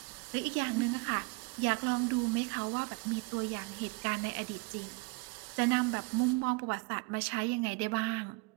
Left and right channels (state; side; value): quieter; left; 27.7 dB